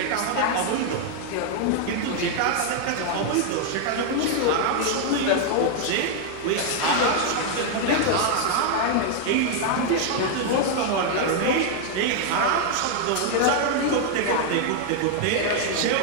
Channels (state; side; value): different; both; correlation 0.00